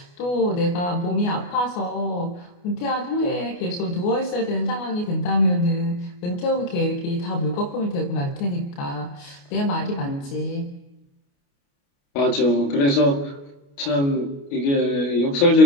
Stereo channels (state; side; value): late; right; 29 ms